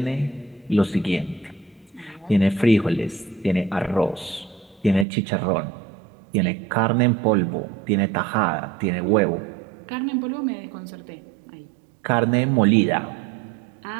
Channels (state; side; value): drops out; left; at 5.1 s